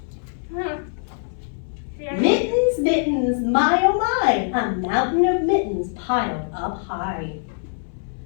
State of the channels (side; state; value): right; silent; 63 dB below the other